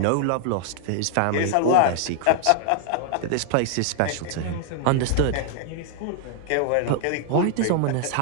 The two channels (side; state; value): both; different; correlation 0.00